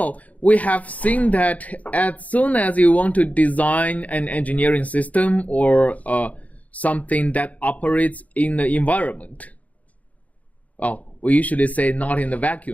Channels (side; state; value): right; late; 0.071 ms